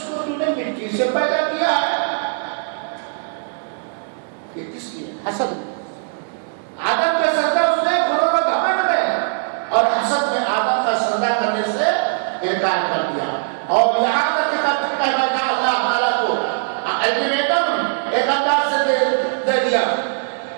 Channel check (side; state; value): left; silent; digital silence